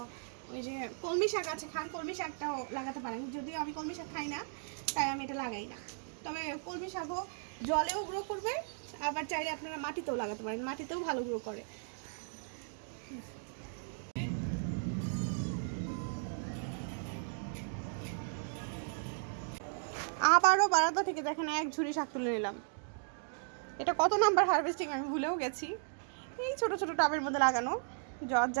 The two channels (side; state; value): left; silent; digital silence